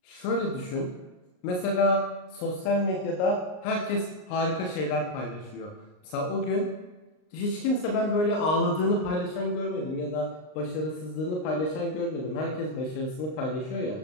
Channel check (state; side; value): late; right; 39 ms